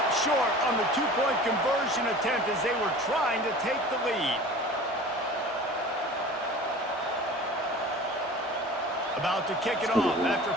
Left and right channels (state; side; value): normal; both; correlation 0.40